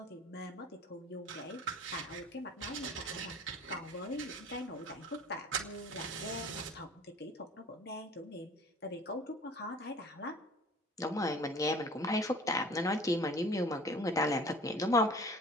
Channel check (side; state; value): both; normal; correlation 0.46